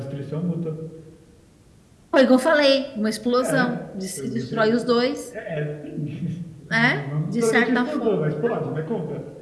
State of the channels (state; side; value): identical; both; correlation 1.00